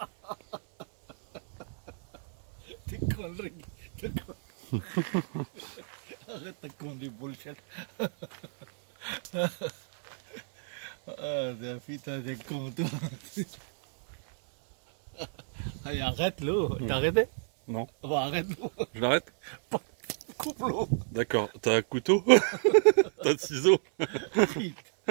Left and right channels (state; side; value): silent; left; 57 dB below the other